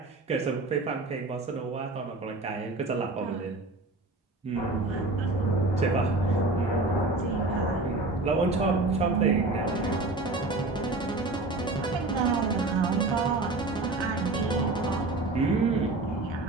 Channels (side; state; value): left; quieter; 3.1 dB